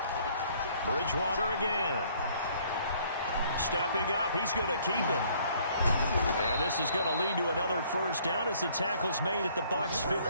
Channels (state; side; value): inverted; both; correlation -0.61